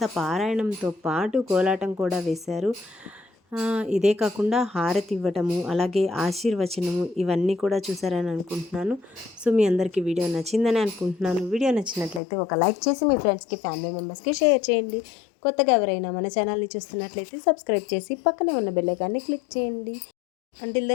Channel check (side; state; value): right; drops out; at 12.2 s